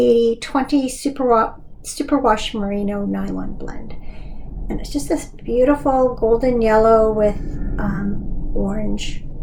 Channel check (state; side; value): identical; both; correlation 1.00